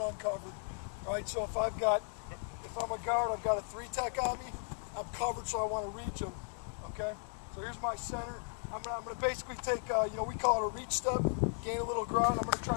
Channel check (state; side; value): silent; right; 54 dB below the other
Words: uncovered. All right, so if I'm a guard, I've got a 3-tech on me. I'm covered, so I want to reach him. Okay, so here's my center. I'm gonna basically take, we call it a reach step, gain a little ground. I'm gonna